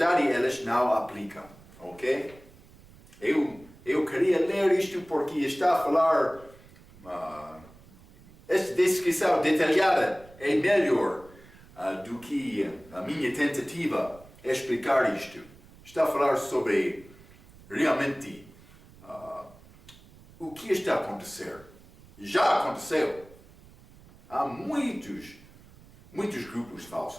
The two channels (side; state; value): right; noise; rumble, 23 dB below the sound